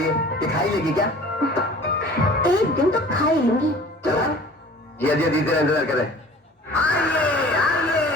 है, ये खाई लेगी क्या? एक दिन तो खा ही लूंगी। चला जिया जिया दीदी इंतजार करे।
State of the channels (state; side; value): normal; both; correlation 0.45